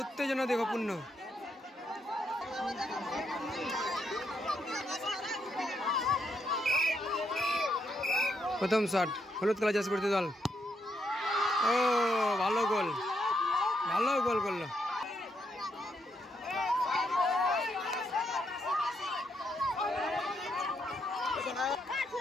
দেখো পূর্ণ। প্রথম শট, হলুদ কালার জার্সি পরিহিত দল। ও ভালো গোল, ভালো গোল করলো।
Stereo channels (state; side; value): normal; both; correlation 0.78